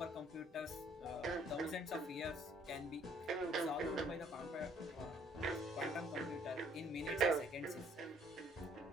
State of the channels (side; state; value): both; normal; correlation 0.61